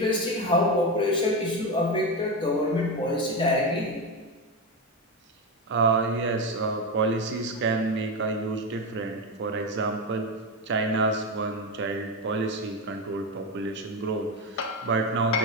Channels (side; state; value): both; normal; correlation 0.14